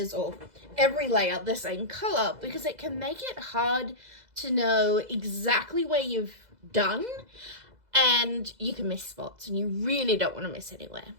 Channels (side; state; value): left; late; 2.0 ms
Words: or every layer the same color because it can make it hard to know exactly where you've done and you can miss spots and you really don't want to miss anywhere.